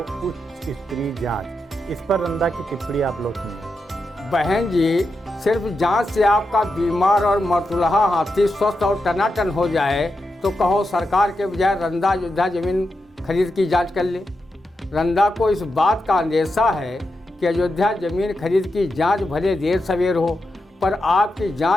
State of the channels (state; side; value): normal; both; correlation 0.87